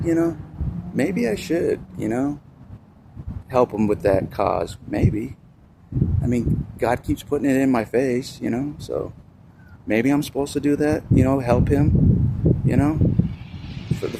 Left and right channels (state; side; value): identical; both; correlation 1.00